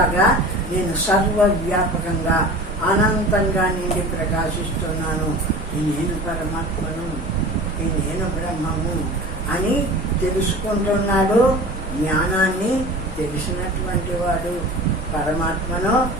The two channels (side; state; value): both; normal; correlation 0.37